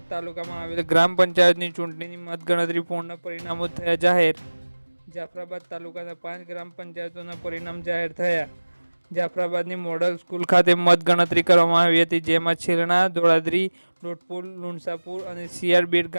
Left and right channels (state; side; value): inverted; both; correlation -1.00